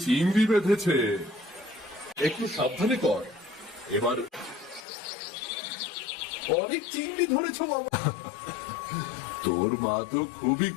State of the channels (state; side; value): drops out; right; at 4.9 s